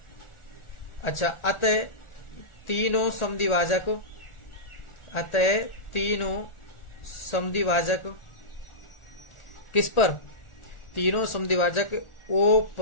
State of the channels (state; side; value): late; right; 1.4 ms